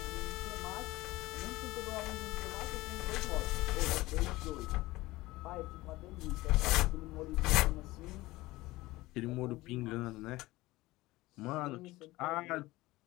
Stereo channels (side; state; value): right; quieter; 19.2 dB